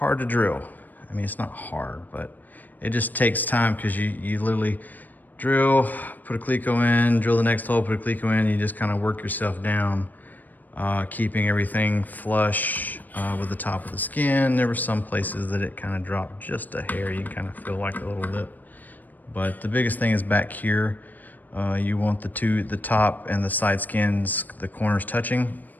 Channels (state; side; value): late; right; 0.085 ms